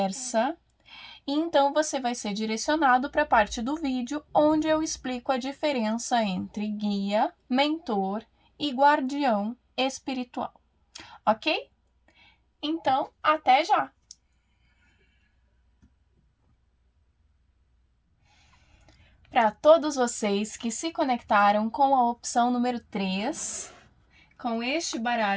e então você vai ser direcionado para a parte do vídeo onde eu explico a diferença entre guia, mentor e guardião espiritual, ok? Então, até já! Para todos vocês que se conectaram com a opção número 3, com este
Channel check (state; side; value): identical; both; correlation 1.00